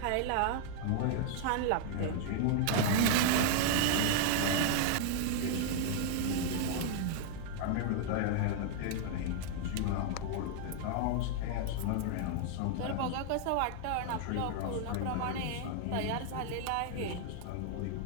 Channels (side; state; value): both; different; correlation 0.00